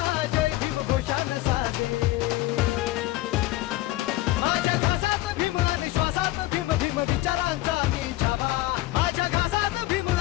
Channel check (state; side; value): quieter; right; 17.2 dB